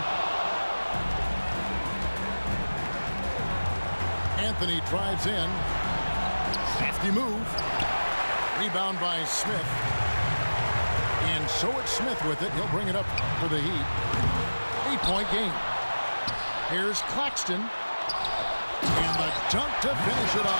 Anthony drives in. Safety move. Rebound by Smith. And so it's Smith with it. He'll bring it up for the Heat. 8-point game. Here's Claxton. And the dunk to finish it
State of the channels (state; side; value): inverted; both; correlation -1.00